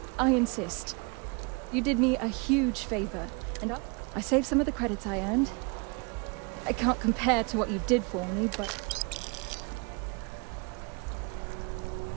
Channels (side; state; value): left; quieter; 32.0 dB